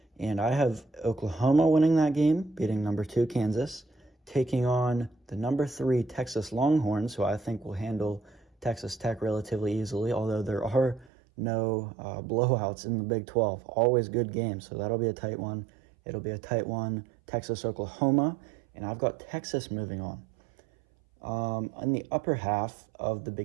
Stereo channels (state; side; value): drops out; left; at 11.1 s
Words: And I have Oklahoma winning that game, beating number 2 Kansas, taking on the number 3 Texas Longhorns, who I think will handle Texas Tech relatively easily, although there are no blowouts in the Big 12. Always good games, so that'll be a tight one. It'll be a tight one, Texas-Oklahoma, and I've got Texas moving on. In the upper half of the